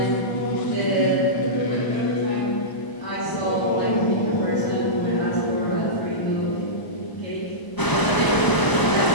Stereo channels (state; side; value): late; right; 1.0 ms